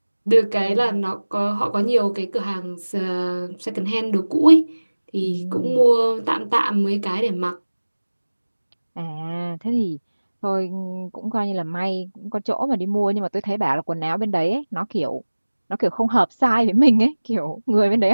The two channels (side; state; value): both; inverted; correlation -1.00